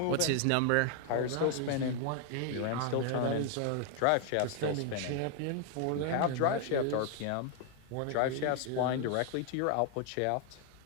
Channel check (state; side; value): different; both; correlation 0.00